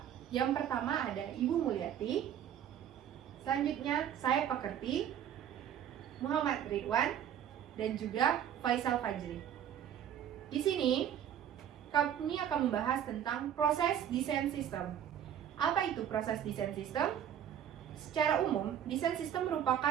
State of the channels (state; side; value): quieter; left; 9.8 dB